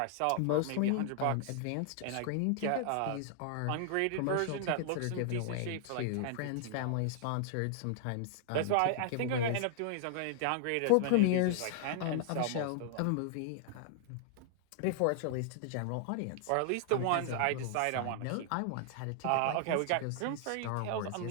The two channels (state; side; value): different; both; correlation 0.00